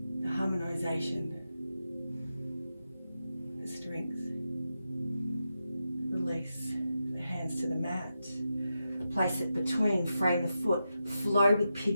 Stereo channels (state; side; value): inverted; both; correlation -0.88